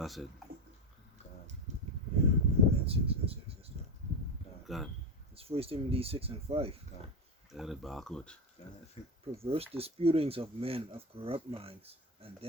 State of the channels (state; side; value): normal; both; correlation 0.16